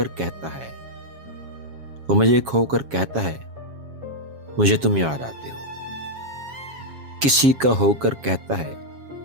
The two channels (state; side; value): late; left; 7.3 ms